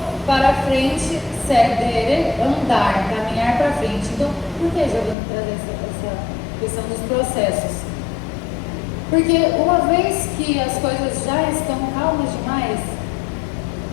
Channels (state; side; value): drops out; right; at 5.2 s